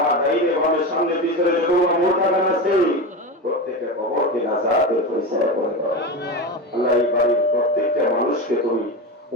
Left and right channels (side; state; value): both; normal; correlation 0.20